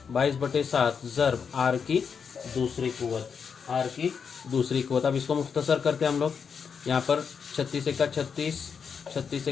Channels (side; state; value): right; quieter; 6.4 dB